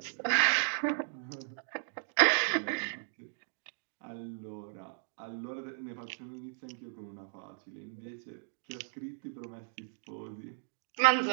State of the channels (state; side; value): silent; left; digital silence